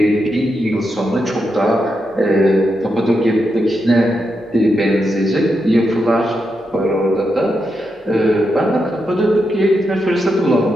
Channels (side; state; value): both; normal; correlation 0.85